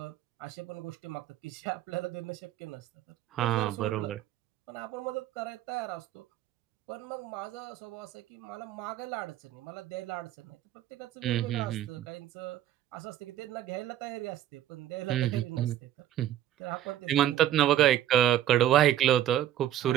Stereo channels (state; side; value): quieter; left; 12.3 dB